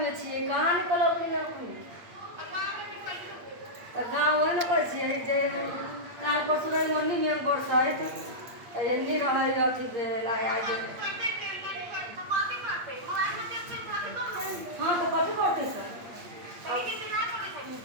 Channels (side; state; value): left; late; 8.6 ms